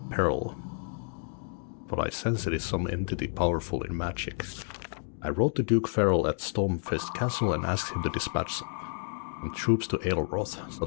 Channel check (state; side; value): silent; right; 58 dB below the other